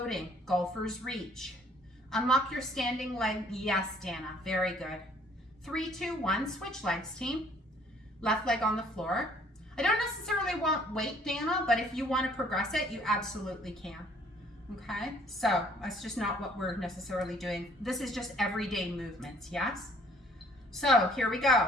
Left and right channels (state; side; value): normal; both; correlation 0.60